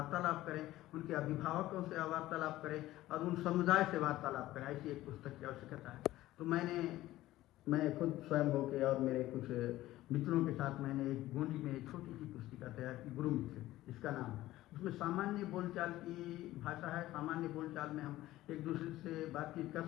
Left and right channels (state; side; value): quieter; right; 15.8 dB